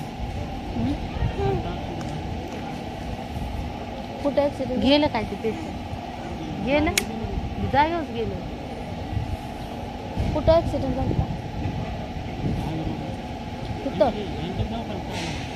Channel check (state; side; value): identical; both; correlation 1.00